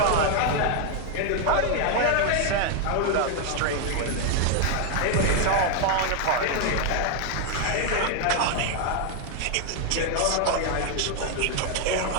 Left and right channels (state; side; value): different; both; correlation 0.01